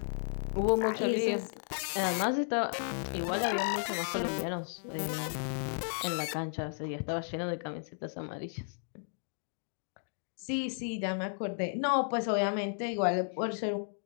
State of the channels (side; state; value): right; silent; digital silence